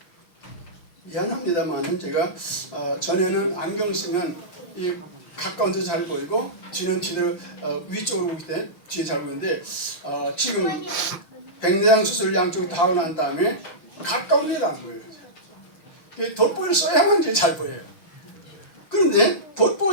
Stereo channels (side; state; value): right; late; 6.2 ms